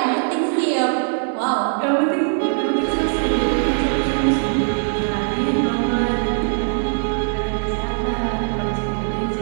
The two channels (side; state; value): left; silent; digital silence